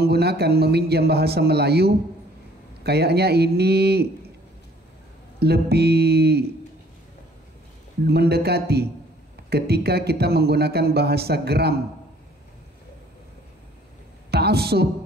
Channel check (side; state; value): both; normal; correlation 0.58